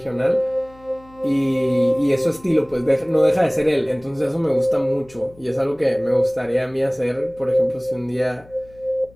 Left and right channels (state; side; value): noise; left; hum, 25 dB below the sound